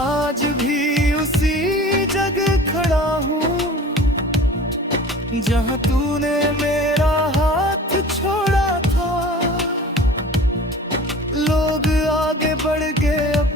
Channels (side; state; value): both; normal; correlation 0.42